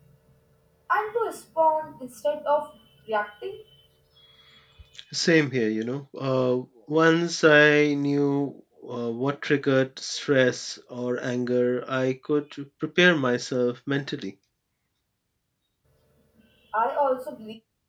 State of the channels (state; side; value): identical; both; correlation 1.00